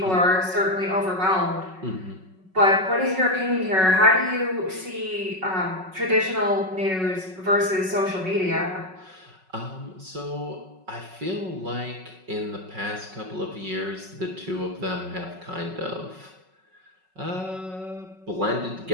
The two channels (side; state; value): left; late; 5.4 ms